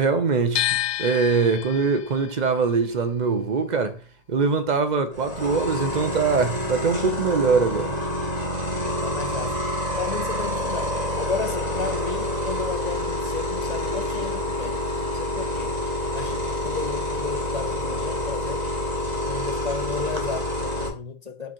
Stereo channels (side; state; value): left; late; 1.9 ms